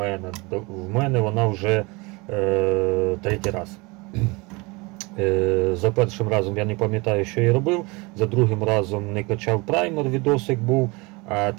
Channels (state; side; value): quieter; left; 25.9 dB